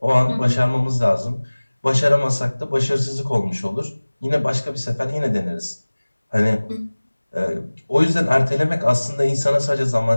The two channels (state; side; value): inverted; both; correlation -1.00